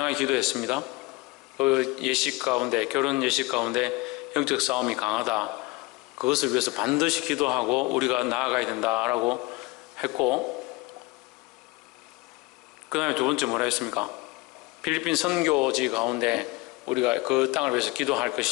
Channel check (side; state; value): right; quieter; 23.1 dB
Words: 기도했습니다. 그 예식 가운데, 결혼 예식 가운데 영적 싸움이 강하다. 그것을 위해서 반드시 기도하고 우리가 나아가야 된다라고 했고, 그 다음에 두 번째 뭐라 했습니까? 필리핀 선교지 가운데 우리가 그 땅을 위해서 기도할